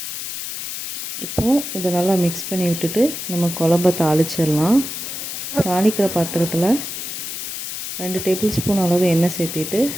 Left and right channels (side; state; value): left; noise; hiss, 6 dB below the sound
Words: இப்போது இதை நல்லா மிக்ஸ் பண்ணி விட்டுட்டு நம்ம குழம்ப தாளிச்சிடலாம். தாளிக்கிற பாத்திரத்தில் 2 டேபிள் ஸ்பூன் அளவு எண்ணெய் சேர்த்திட்டு